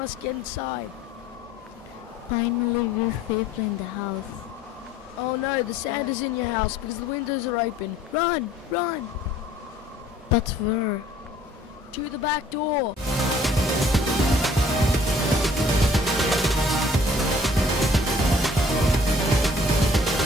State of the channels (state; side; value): normal; both; correlation 0.56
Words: get inside. Finally, we're safely in the house. Oh no, the sand is in your house because the windows are open. Run! But where? To the back door.